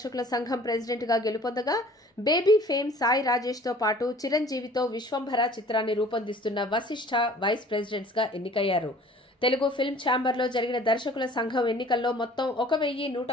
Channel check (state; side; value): normal; both; correlation 0.50